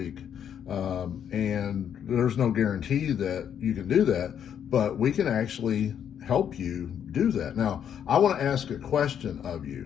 And there's no guarantee that you can do that, but we can actually help you do that. Now, I want to ask a question of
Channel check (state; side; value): quieter; right; 8.9 dB